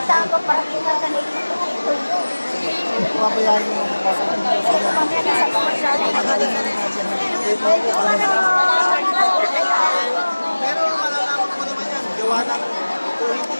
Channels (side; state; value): both; inverted; correlation -1.00